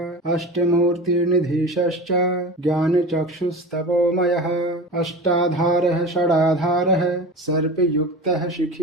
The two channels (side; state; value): both; normal; correlation 0.32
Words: अष्टमूर्तिर्निधीशश्च ज्ञानचक्षुस्तपोमयः अष्टाधारः षडाधारः सर्पयुक्तः